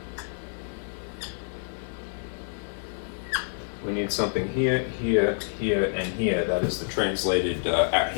we need something here, here, here, and here. That is the translated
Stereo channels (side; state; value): right; silent; digital silence